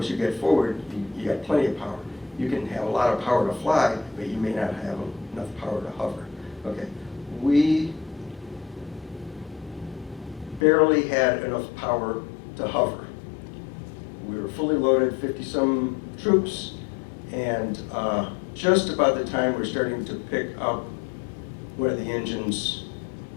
you get forward, you got plenty of power. You can have a lot of power to fly, but you may not have enough power to hover. Okay, we barely had enough power to hover. We were fully loaded, 50-some troops, and just about the time we're starting to pick up one of the engines,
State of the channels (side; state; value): right; drops out; at 10.6 s